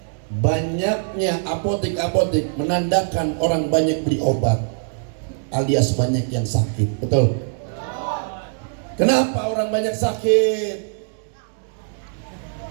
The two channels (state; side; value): silent; left; digital silence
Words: banyaknya apotek-apotek menandakan orang banyak beli obat, alias banyak yang sakit. Betul? Kenapa orang banyak sakit?